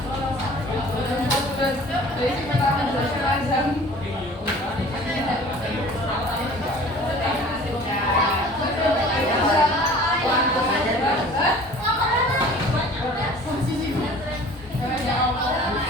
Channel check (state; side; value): normal; both; correlation 0.46